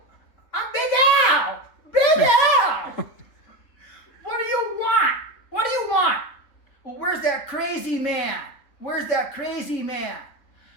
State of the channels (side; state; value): right; late; 3.7 ms